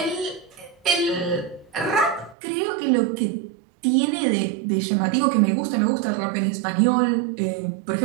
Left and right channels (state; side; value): drops out; left; at 2.4 s